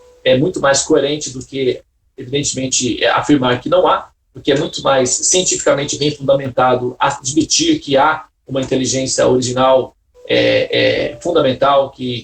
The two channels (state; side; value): identical; both; correlation 1.00